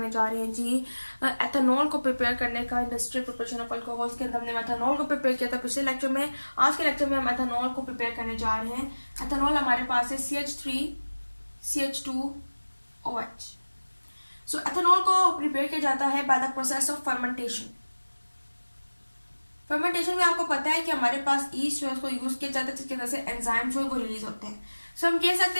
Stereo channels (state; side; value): inverted; both; correlation -1.00